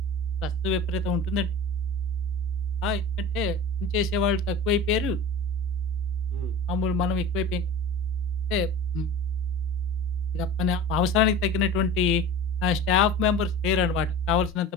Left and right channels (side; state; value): both; normal; correlation 0.36